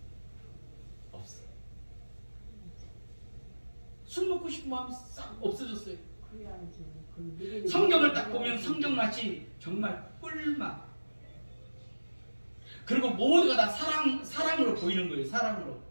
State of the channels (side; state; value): both; inverted; correlation -1.00